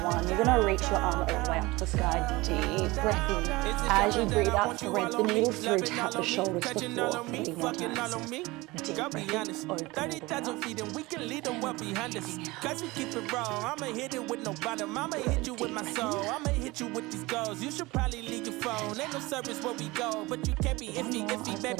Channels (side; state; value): left; quieter; 21.7 dB